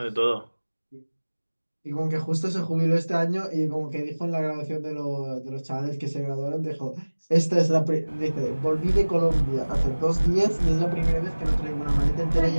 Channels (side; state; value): both; inverted; correlation -1.00